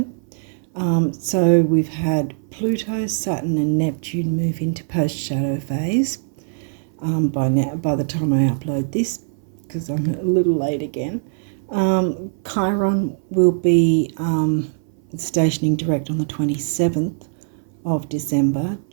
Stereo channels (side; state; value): left; silent; 62 dB below the other